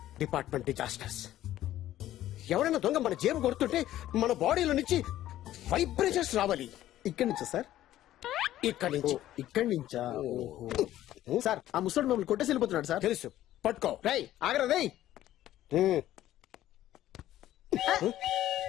Department disasters. ఎవరైనా దొంగ మన జేబు కొడుతుంటే మన బాడీలో నుంచి వైబ్రేషన్స్ రావాలి. ఇక్కడి నుంచా సార్? ఇక్కడి నుంచి. ఇక్కడి నుంచా? సార్ ఆ ముసడు మమ్మల్ని కొట్టేసి వెళ్ళిపోతున్నాడు సార్. తెలుసు, పట్టుకో. రై ఆగరా రై.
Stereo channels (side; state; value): right; quieter; 13.5 dB